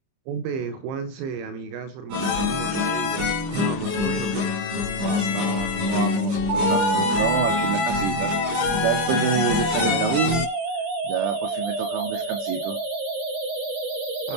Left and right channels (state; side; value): late; left; 30 ms